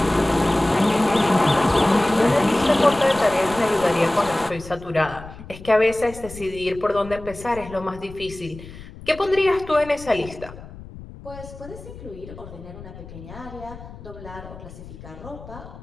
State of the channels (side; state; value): left; noise; rumble, 15 dB below the sound